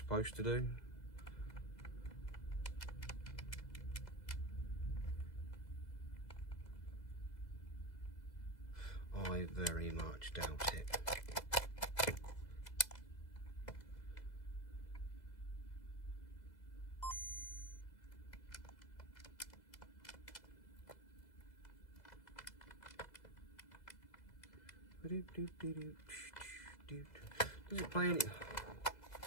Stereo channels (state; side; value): late; right; 2.0 ms